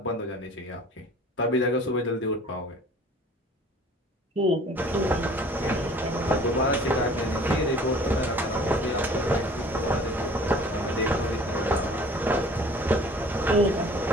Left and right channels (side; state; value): both; normal; correlation 0.49